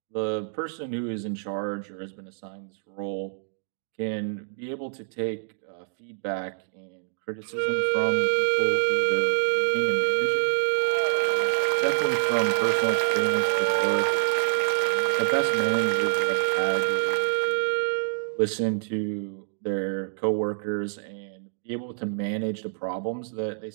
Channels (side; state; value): left; silent; digital silence